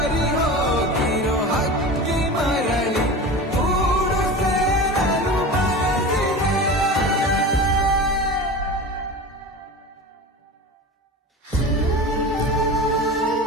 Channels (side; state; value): both; normal; correlation 0.31